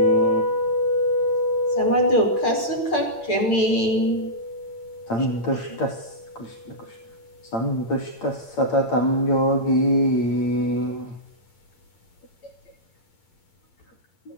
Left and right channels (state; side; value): late; right; 8.9 ms